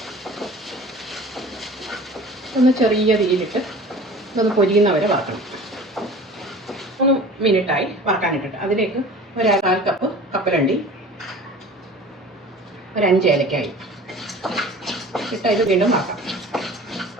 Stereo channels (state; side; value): normal; both; correlation 0.42